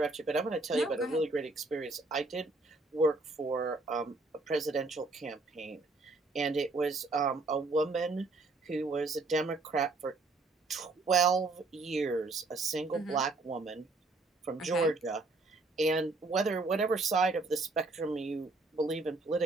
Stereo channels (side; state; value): left; quieter; 3.3 dB